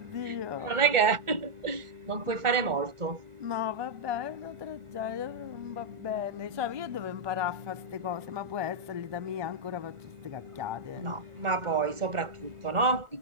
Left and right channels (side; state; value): left; late; 1.4 ms